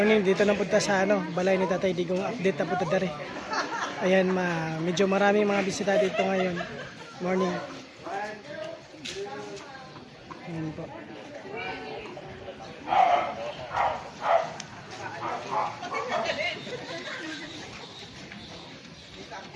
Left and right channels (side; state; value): both; identical; correlation 1.00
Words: Dito na punta sa balay ni Tatay Digong. Update na punta dari. Ayan, medyo maraming mga bisita dito ngayon. Morning. Ayan po.